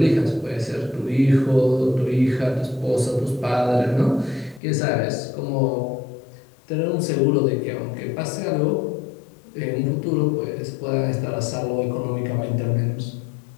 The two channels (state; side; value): drops out; right; at 4.6 s